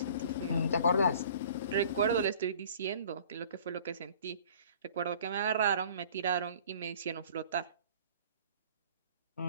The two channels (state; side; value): inverted; both; correlation -0.49